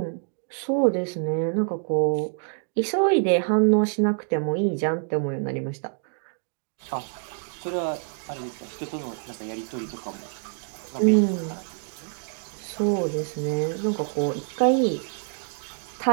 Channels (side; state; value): left; silent; 60 dB below the other